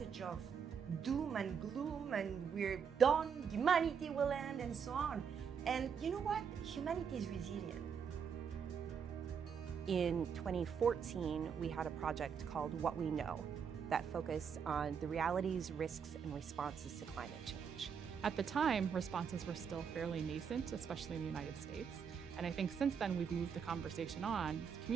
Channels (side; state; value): left; quieter; 6.9 dB